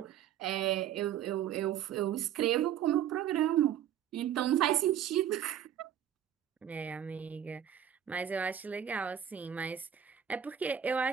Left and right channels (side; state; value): left; quieter; 9.9 dB